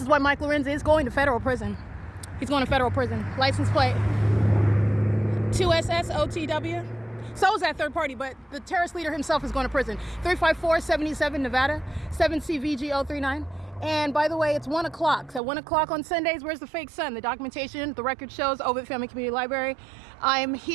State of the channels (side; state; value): left; drops out; at 15.4 s